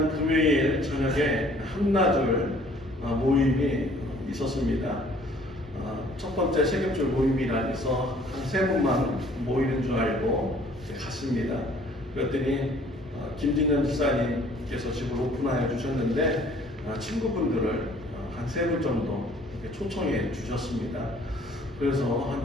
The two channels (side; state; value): both; normal; correlation 0.56